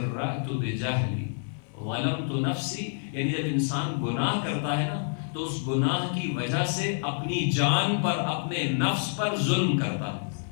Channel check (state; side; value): silent; right; 58 dB below the other